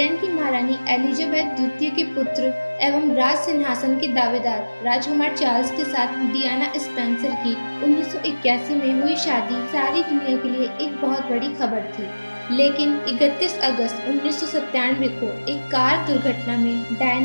की महारानी एलिजाबेथ द्वितीय के पुत्र एवं राज सिंहासन के दावेदार राजकुमार चार्ल्स के साथ डियाना स्पेंसर की 1981 में हुई शादी सारी दुनिया के लिए एक बहुत बड़ी खबर थी। लेकिन 31 अगस्त 1997 को एक कार दुर्घटना में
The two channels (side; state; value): both; inverted; correlation -1.00